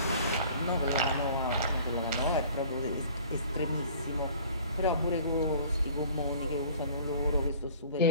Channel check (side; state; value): both; inverted; correlation -0.49